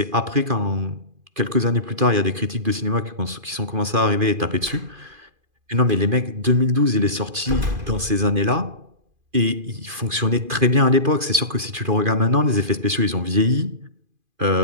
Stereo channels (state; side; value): late; left; 2.5 ms